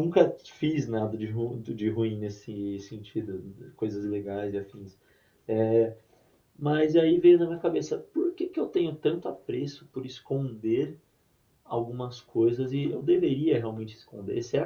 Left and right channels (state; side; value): identical; both; correlation 1.00